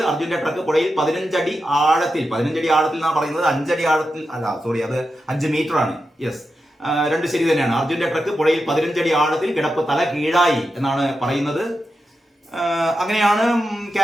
അർജുന്റെ ട്രക്ക് പുഴയിൽ 15 അടി ആഴത്തിൽ എന്നാണ് പറയുന്നത്. 5 അടി ആഴത്തിൽ അല്ല, സോറി, അത് 5 മീറ്റർ ആണ്. യെസ്, 2 ശരി തന്നെയാണ്. അർജുന്റെ ട്രക്ക് പുഴയിൽ 15 അടി ആഴത്തിൽ കിടപ്പ് തല കീഴായി എന്നാണ് പറയുന്നത്. അങ്ങനെയാണ്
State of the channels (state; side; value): normal; both; correlation 0.89